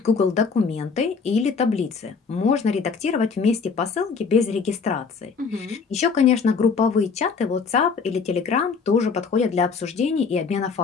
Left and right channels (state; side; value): quieter; right; 5.3 dB